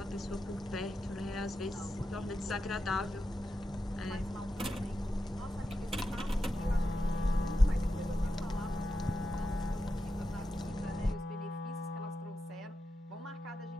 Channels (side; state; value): both; normal; correlation 0.89